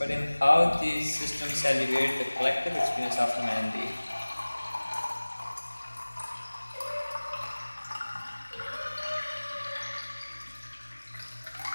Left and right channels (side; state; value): both; inverted; correlation -1.00